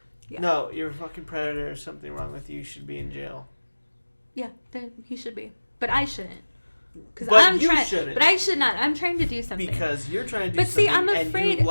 Yeah. No, you're a fucking predator. There's something wrong with you. You should be in jail. Yeah, then he should be. But I shouldn't. But I should not. I'm trying to do something. Because you're trying to do something. But see, I'm afraid.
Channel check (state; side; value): inverted; both; correlation -1.00